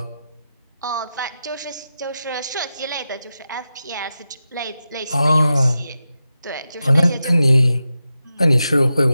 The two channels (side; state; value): both; inverted; correlation -0.90